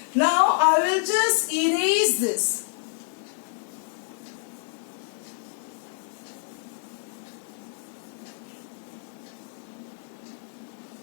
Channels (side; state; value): right; silent; digital silence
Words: Now I will just erase this.